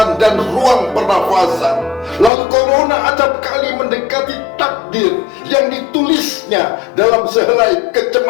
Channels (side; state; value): right; drops out; at 2.3 s